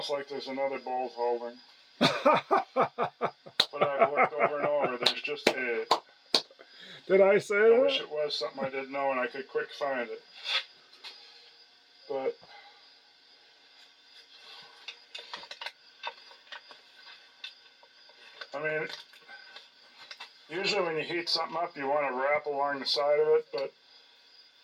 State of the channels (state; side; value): identical; both; correlation 1.00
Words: like there's another bolt holding. But I've looked over and over. There's just a... Did I say that? I wish it was something I didn't know and I could quick find it. But... I mean, usually when you heat something up, you want to wrap along the side of it, but